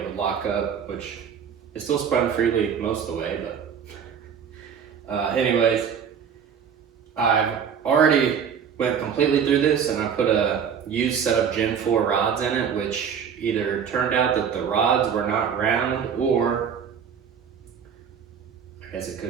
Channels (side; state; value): left; quieter; 7.4 dB